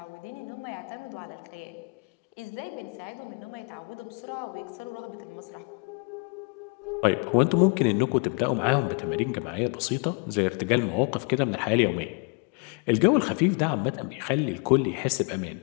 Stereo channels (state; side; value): quieter; right; 36.1 dB